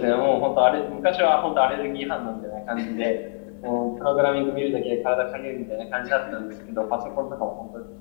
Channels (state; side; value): silent; right; 62 dB below the other